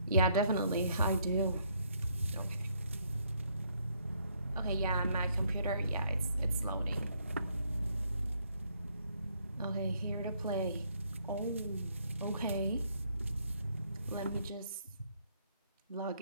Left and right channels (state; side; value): inverted; both; correlation -0.70